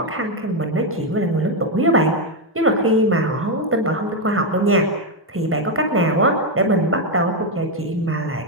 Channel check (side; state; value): both; normal; correlation 0.04